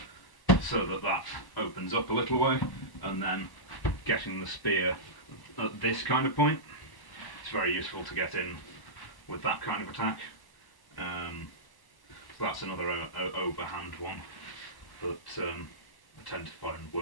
so that opens up a little way, and then getting the spear at this kind of point. It's very useful to get in with that kind of attack. So that's another overhand one that I tend to find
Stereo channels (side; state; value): right; late; 1.0 ms